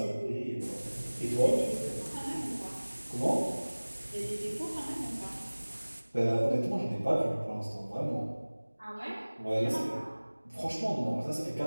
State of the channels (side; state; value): both; inverted; correlation -1.00